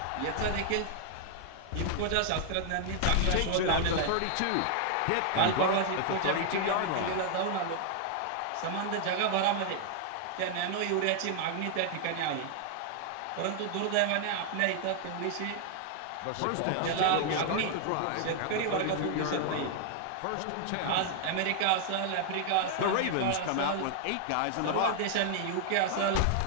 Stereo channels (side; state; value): both; different; correlation 0.00